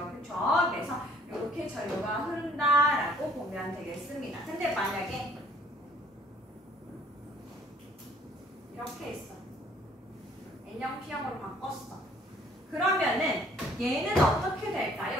그쵸? 그래서 이렇게 전류가 흐른다라고 보면 되겠습니다. 근데 만약에 이렇게 했어. N형 P형으로 바꿨어. 그러면은 얘는 어떻게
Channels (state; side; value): normal; both; correlation 0.59